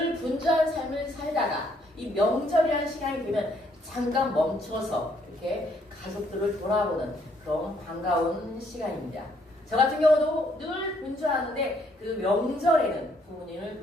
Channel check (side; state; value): both; normal; correlation 0.69